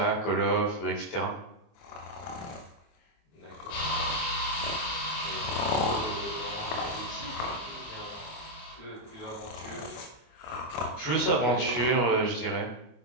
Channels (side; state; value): right; late; 24 ms